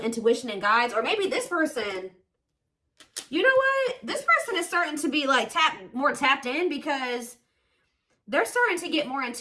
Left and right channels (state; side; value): identical; both; correlation 1.00